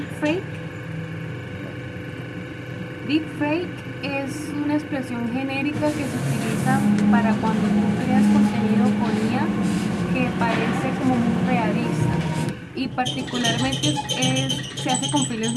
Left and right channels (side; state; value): both; identical; correlation 1.00